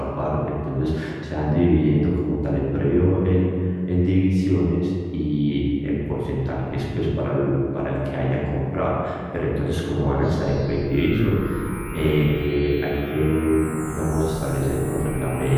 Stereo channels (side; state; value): both; identical; correlation 1.00